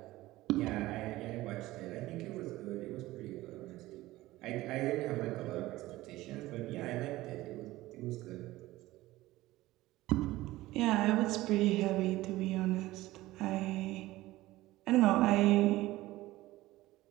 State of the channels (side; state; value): left; quieter; 17.5 dB